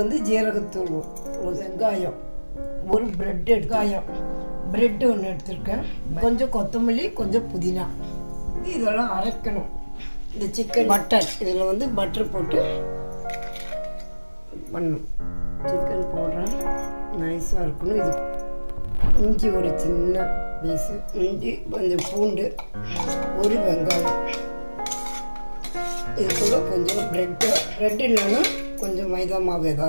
ஜீரகத்தூள், ஒரு வெங்காயம், ஒரு பிரெட் ஒன்று எடுத்துருக்கேன், கொஞ்சம் கொத்தமல்லி, கொஞ்சம் புதினா. இதெல்லாம் அரைக்கணும். இந்த சிக்கன் பட்டர், இதில் பட்டர் போட்டு பண்ணணும். சிக்கன் போடுறேன், நைஸாக இருக்கணும். இது இஞ்சி ஒரு சின்ன பீஸு இஞ்சி, கொஞ்சம் பூண்டு, ஒரு வெங்காயம், இது கூட கொஞ்சம் ப்ரெட் இல்லைன்னா கொஞ்சம் மைதா மாவு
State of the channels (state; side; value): inverted; both; correlation -1.00